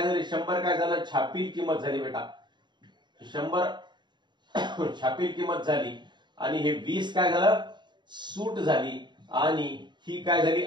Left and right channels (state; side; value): late; left; 0.22 ms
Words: झालं, 100 काय झालं, छापील किंमत झाली बेटा, 100 छापील किंमत झाली आणि हे 20 काय झालं, सूट झाली आणि ही काय झाली,